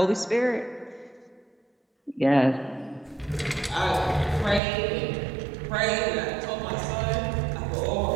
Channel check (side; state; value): left; drops out; at 4.6 s